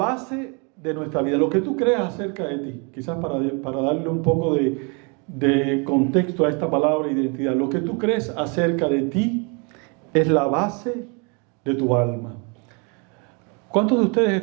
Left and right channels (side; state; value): left; quieter; 33.8 dB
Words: de nuestra vida, lo que tú creas acerca de ti. Quizás para darle un poco de contexto a esta palabra identidad. Lo que tú crees acerca de ti es la base de tu alma. ¿Cuántos de ustedes